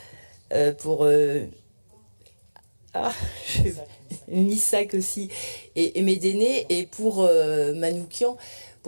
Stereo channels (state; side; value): inverted; both; correlation -1.00